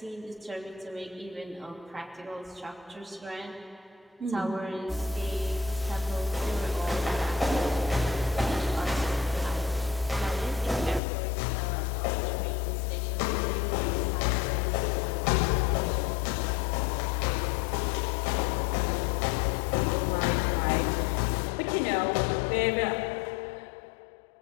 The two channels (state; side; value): drops out; right; at 11.0 s